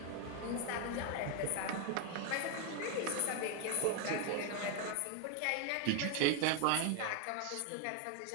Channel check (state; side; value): different; both; correlation 0.01